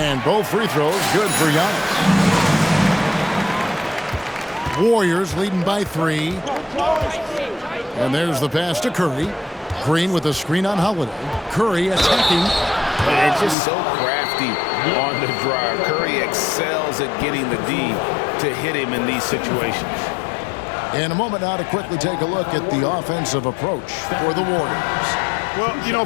both free throws good for Giannis. Warriors leading by 3. And there's the pass to Curry. Green with a screen on Holiday. Curry attacking. And just so crafty on the drive. Curry excels at getting the D to hit him in these situations. In a moment now to quickly take a look at the offensive approach for the Warriors. Well, you know,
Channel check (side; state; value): right; drops out; at 13.6 s